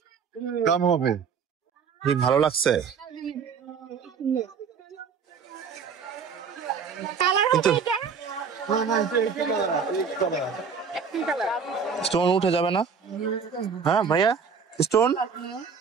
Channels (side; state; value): left; quieter; 6.1 dB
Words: কম হবে। ভালো লাগছে কালার হবে এটা? স্টোন উঠে যাবে না? হ্যাঁ ভাইয়া, স্টোন